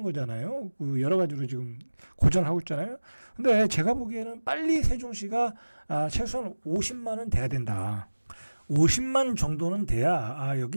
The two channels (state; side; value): inverted; both; correlation -1.00